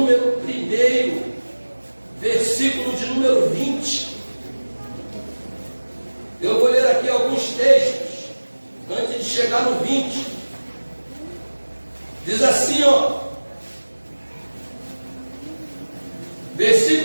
1, versículo de número 20. Eu vou ler aqui alguns textos, antes de chegar no 20. Diz assim, ó,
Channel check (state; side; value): inverted; both; correlation -1.00